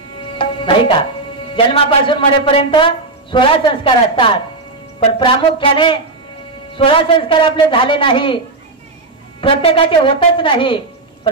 नाही का? जन्मापासून मरेपर्यंत 16 संस्कार असतात पण प्रामुख्याने 16 संस्कार आपले झाले नाही, प्रत्येकाचे होतच नाही,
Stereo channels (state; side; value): quieter; left; 3.3 dB